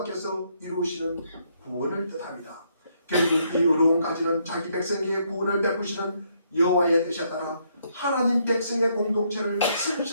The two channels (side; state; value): both; inverted; correlation -0.72